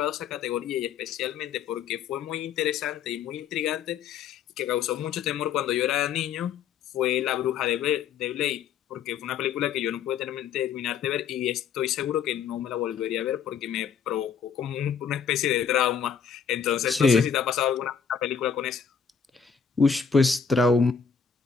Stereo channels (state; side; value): quieter; right; 7.0 dB